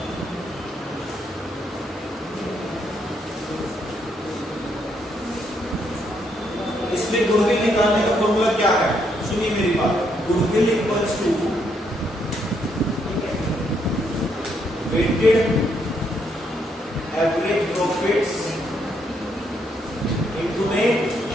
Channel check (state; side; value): normal; both; correlation 0.74